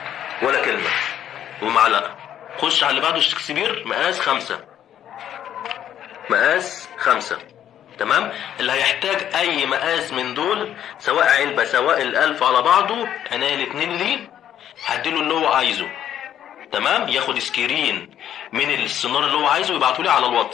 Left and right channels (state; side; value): quieter; right; 10.5 dB